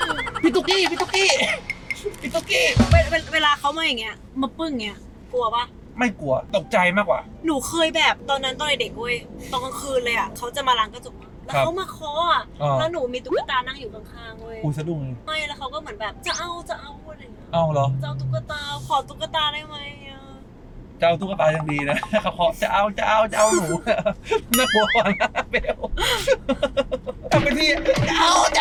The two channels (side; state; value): both; identical; correlation 1.00